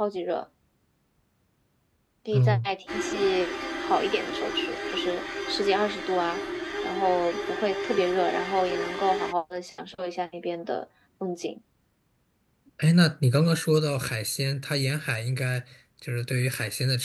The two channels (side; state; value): both; identical; correlation 1.00